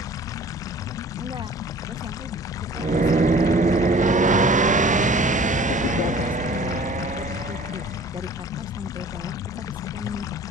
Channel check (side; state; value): both; normal; correlation 0.47